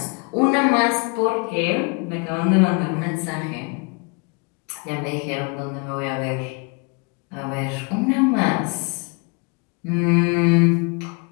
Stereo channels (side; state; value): right; quieter; 32.4 dB